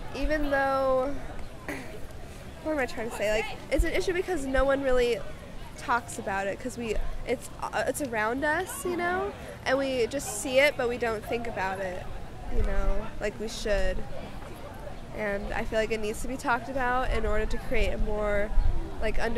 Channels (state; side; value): identical; both; correlation 1.00